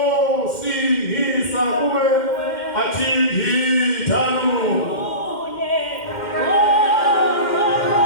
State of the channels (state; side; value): late; right; 2.1 ms